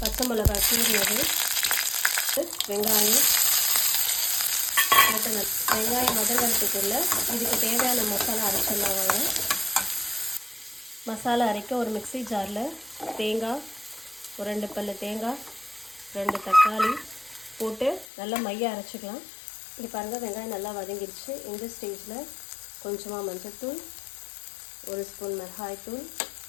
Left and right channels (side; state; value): right; drops out; at 18.1 s